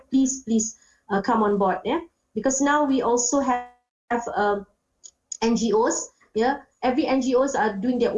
please come on board, because now we also have NGOs, every NGOs are doing their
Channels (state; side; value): identical; both; correlation 1.00